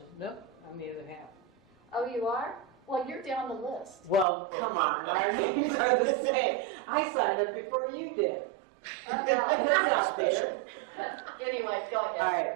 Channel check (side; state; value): left; drops out; at 4.2 s